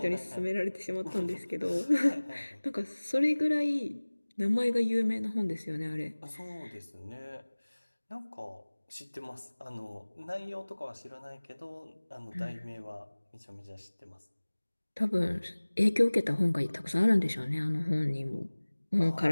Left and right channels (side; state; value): both; inverted; correlation -1.00